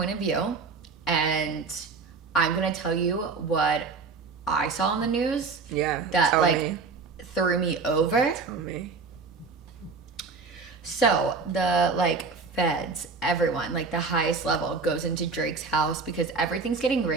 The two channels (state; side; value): quieter; left; 4.6 dB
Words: of view, and I'm going to tell you what I saw in the news. Yeah, that, like, threw me over. Tell me. So, the, like, feds, everyone, like the highest level, goes into Drake's house because everything's getting